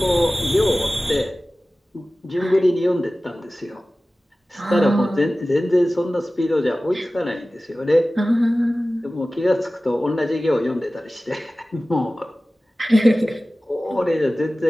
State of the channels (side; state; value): both; normal; correlation 0.97